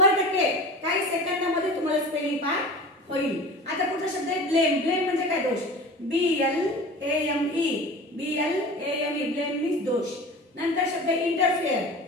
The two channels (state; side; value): normal; both; correlation 0.36